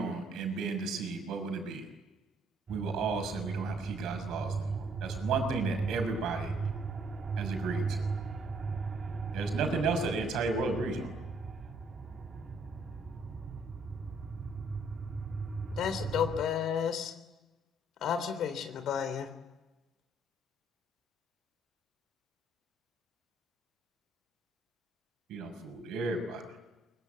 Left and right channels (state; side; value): normal; both; correlation 0.66